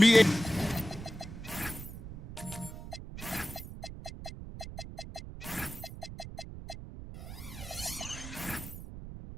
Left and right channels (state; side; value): noise; right; rumble, 11 dB below the sound